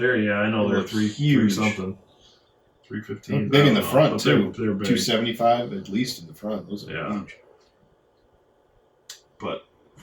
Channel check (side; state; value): both; identical; correlation 1.00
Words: yeah, I know They they're look three huge. something. 315. They're big I in the don't know, front, but too. They're big. 275 at least in the front. Those are Yeah. huge. But